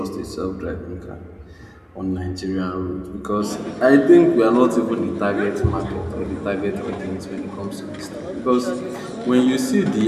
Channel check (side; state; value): both; identical; correlation 1.00